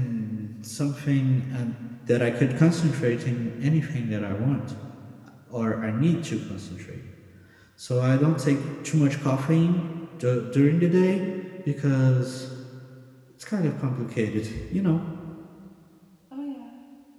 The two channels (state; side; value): identical; both; correlation 1.00